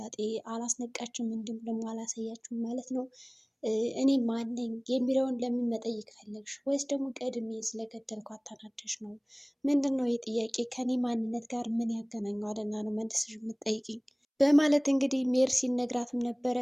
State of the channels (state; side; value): identical; both; correlation 1.00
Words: አላስነቃችም፣ እንዲሁም ደግሞ አላሳያችሁም ማለት ነው። እኔ ማን ነኝ የሚለውን ለምን መጠየቅ ፈለግሽ? ወይስ ደግሞ ቀድሜ ስለገደልኳት ተናደሽ ነው? ምንድን ነው የጥያቄ ከኔ ማንነት ጋር ምን ያገናኘዋልና ነው መልስሽ የምትጠይቅኝ? በማለት እንግዲህ ሜርሲን ነግራትም ነበረ።